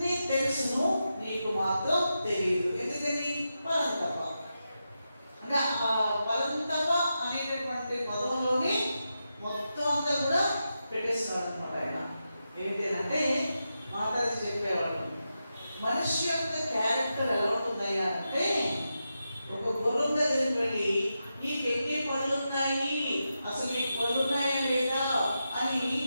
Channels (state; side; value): inverted; both; correlation -0.88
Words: తెలుసును, నీకు మాత్రం తెలియదు. ఎందుకని? పరంతప. అంటే ఆ పరంతప అనేటటువంటి పదంలోనే మొత్తం అంతా కూడా పెట్టేస్తున్నాడు అనమాట ఆయన. ఏంటంటే మాట్లాడి చెప్పేవాడు, మనిషి యొక్క క్యారెక్టర్ ఎలా ఉంటుందయ్యా అంటే, ఒక గుర్రం దగ్గరికి వెళ్ళి నీకు ఎన్ని పళ్ళు ఉన్నాయి, అసలు నీకు పళ్ళు ఉన్నాయా లేదా అని